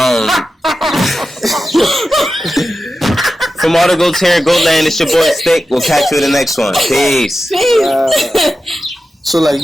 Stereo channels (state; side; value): normal; both; correlation 0.92